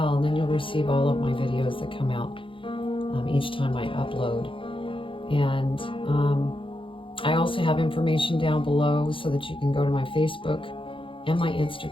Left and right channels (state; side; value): late; right; 0.25 ms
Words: and then you'll receive all of my videos that come out each time I upload. And I also have information down below so that you can go to my Facebook and my